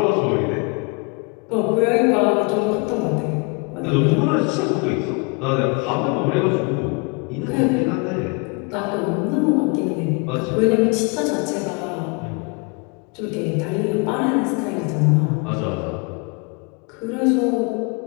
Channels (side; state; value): right; quieter; 32.0 dB